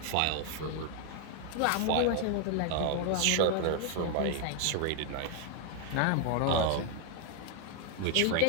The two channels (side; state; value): both; different; correlation 0.00